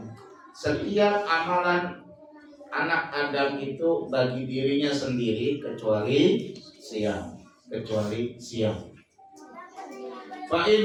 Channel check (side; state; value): both; identical; correlation 1.00